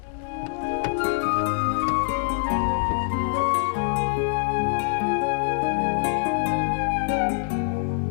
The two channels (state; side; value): silent; right; 62 dB below the other